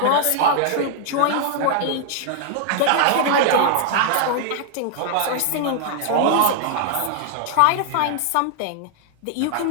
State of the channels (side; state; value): both; different; correlation 0.00